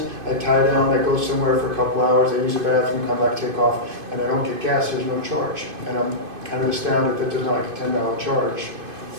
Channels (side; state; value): left; late; 2.5 ms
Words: I tie down, I go somewhere for a couple hours, I use a bathroom, come back, take off, and I don't get gas, there's no charge. And I'm kind of astounded that there's not like a $10 charge